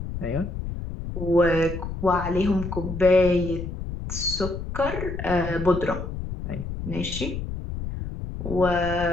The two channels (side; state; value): left; noise; rumble, 6 dB below the sound